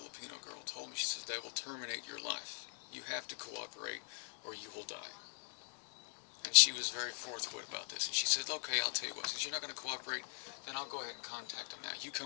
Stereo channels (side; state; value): right; silent; 50 dB below the other